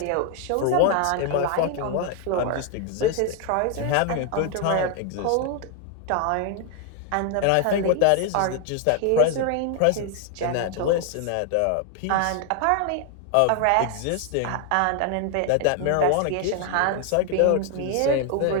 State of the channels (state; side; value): different; both; correlation 0.00